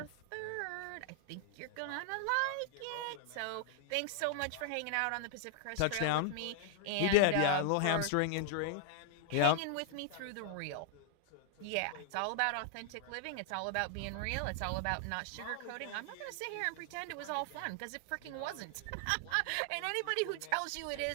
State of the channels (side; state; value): both; different; correlation 0.00